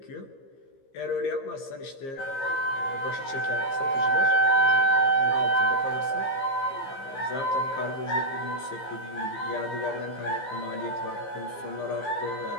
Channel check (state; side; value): late; right; 15 ms